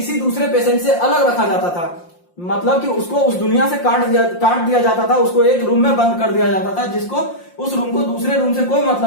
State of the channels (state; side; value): late; right; 5.7 ms